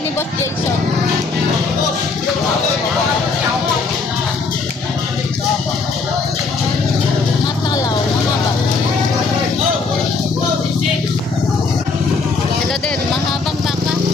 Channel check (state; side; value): quieter; right; 4.3 dB